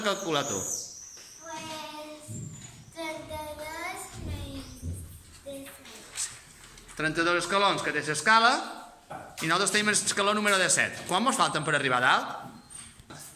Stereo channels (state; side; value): identical; both; correlation 1.00